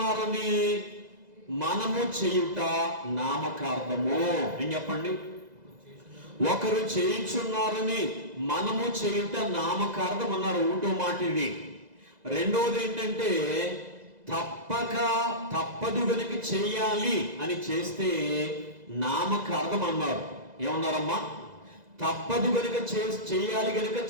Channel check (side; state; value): left; late; 2.0 ms